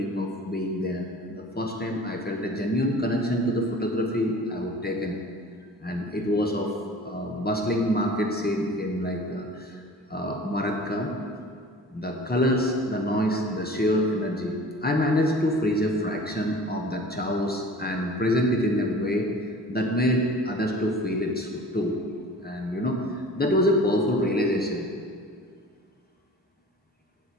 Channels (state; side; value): normal; both; correlation 0.43